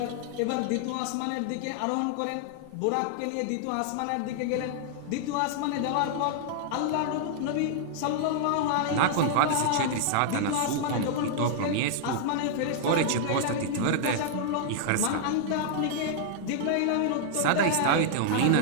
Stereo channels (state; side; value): different; both; correlation -0.01